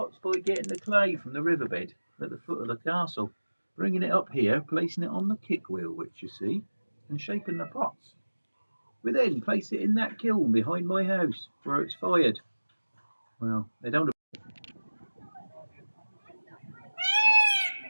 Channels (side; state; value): both; inverted; correlation -1.00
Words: by getting the clay from the riverbed at the foot of the castle, bringing it up here, placing it on the kick wheel, which you see, and shaping the pots. We then place it in that kiln behind my house, where it's fired. Well, they don't.